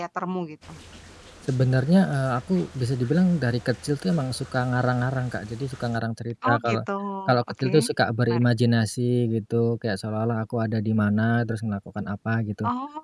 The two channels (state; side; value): identical; both; correlation 1.00